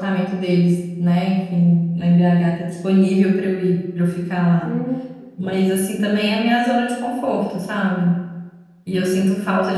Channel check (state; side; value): identical; both; correlation 1.00